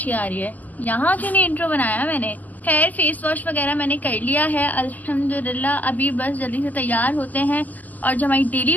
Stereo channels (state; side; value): late; right; 0.081 ms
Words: आ रही है। यहाँ क्यों नहीं इंट्रो बनाया मैंने। खैर फेस वॉश वगैरह मैंने कर लिया है अल्हम्दुलिल्लाह। अभी बस जल्दी से तैयार होते हैं और जो हमारी डेली